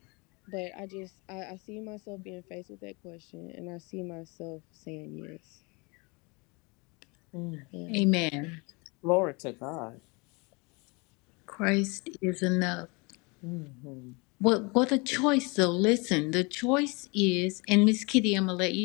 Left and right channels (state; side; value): quieter; right; 28.9 dB